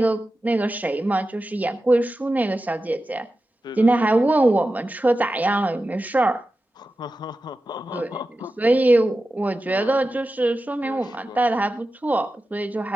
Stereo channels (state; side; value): normal; both; correlation 0.93